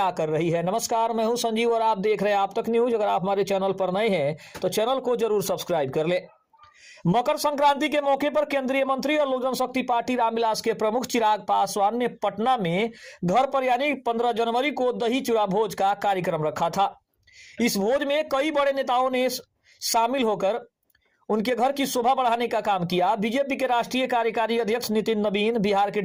कर रही है। नमस्कार, मैं हूं संजीव और आप देख रहे हैं आप तक न्यूज। अगर आप हमारे चैनल पर नए हैं तो चैनल को जरूर सब्सक्राइब कर ले। मकर संक्रांति के मौके पर केंद्रीय मंत्री और लोक जनशक्ति पार्टी रामविलास के प्रमुख चिराग पासवान ने पटना में घर पर यानी 15 जनवरी को दही चूड़ा भोज का कार्यक्रम रखा था। इस भोज में कई बड़े नेताओं ने शामिल होकर उनके घर की शोभा बढ़ाने का काम किया। बीजेपी के राष्ट्रीय कार्यकारी अध्यक्ष नितिन नवीन, बिहार के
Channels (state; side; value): identical; both; correlation 1.00